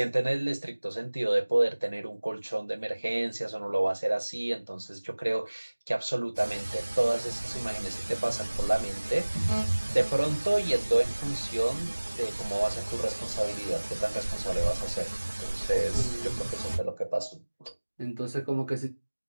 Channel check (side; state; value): both; inverted; correlation -1.00